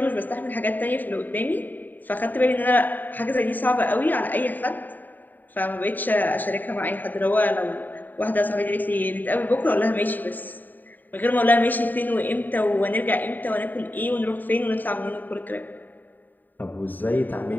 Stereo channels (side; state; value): right; late; 0.088 ms